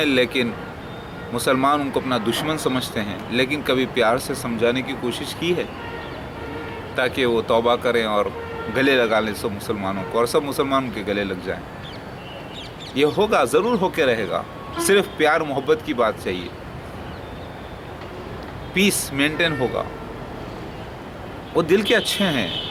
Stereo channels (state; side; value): identical; both; correlation 1.00